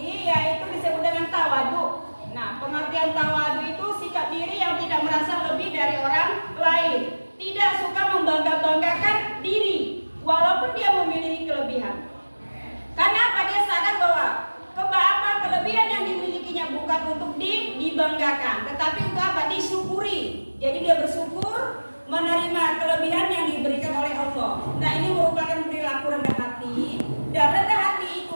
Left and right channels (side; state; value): both; inverted; correlation -1.00